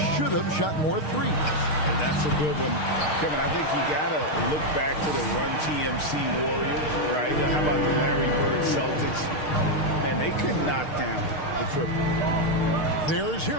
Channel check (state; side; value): late; right; 6.5 ms